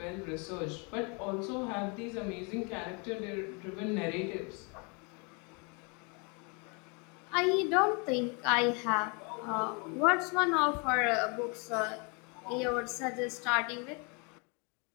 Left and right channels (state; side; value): quieter; right; 32.9 dB